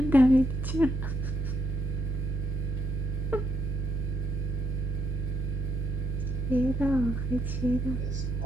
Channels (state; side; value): normal; both; correlation 0.76